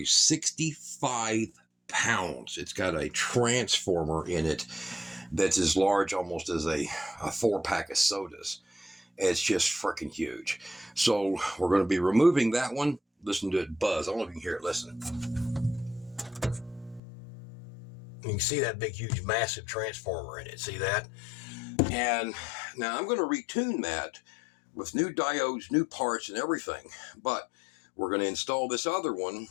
65 pounds. It's got a transformer in it that's as large almost as a 4-pack of sodas. It's just freaking huge. So we're going to be removing that one. Listen to it buzz. I don't know if you can hear it. Listen. You can see that big, huge, massive transformer in it. See that? And now I'm going to retune that with new diodes, new parts, and everything. But we're going to install this other one,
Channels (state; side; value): drops out; right; at 17.0 s